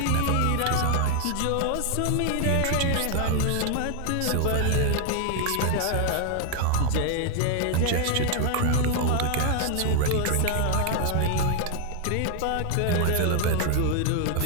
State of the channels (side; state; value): both; different; correlation 0.00